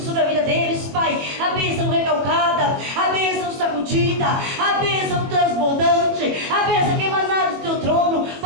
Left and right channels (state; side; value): late; left; 21 ms